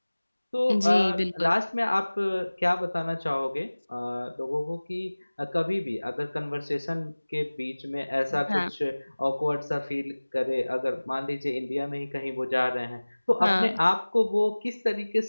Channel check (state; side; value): inverted; both; correlation -1.00